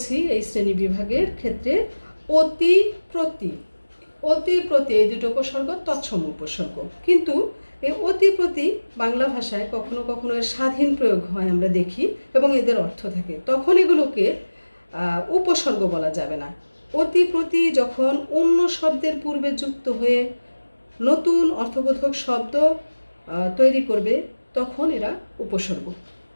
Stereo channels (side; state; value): both; inverted; correlation -1.00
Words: এই শ্রেণী বিভাগের ক্ষেত্রে অতি, প্রতি, এই দুটো উপসর্গ তৎসম উপসর্গ। কিন্তু এই অতি, প্রতি বাংলা ভাষায় কখনো কখনো এর স্বাধীন প্রয়োগ হয় আমরা দেখি, এবং এদের অর্থ থাকে, তখন এগুলোকে উপসর্গ বলা যাবে না। অতি, প্রতি যখন অন্য শব্দের পূর্বে যুক্ত হয়ে নতুন অর্থবোধক শব্দ তৈরি করবে, তখন এরা উপসর্গ।